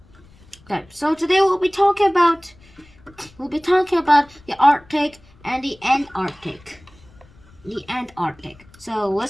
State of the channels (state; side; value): noise; left; rumble, 27 dB below the sound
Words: Okay, so today we'll be talking about the Arctic and the Antarctic. The Antarctic. So